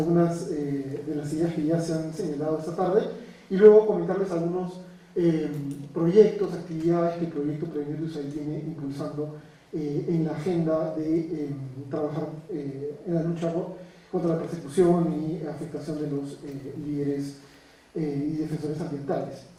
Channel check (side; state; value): both; identical; correlation 1.00